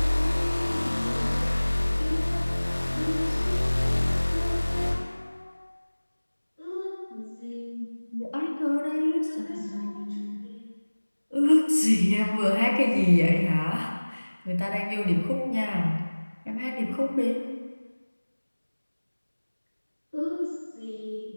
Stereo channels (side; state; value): both; inverted; correlation -1.00